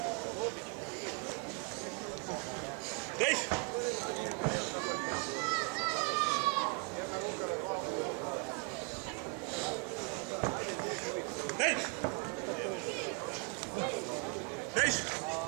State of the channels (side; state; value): left; quieter; 34.3 dB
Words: Deix! Deix! Deix!